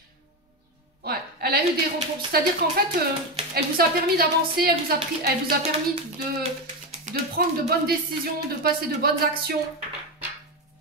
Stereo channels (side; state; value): both; normal; correlation 0.14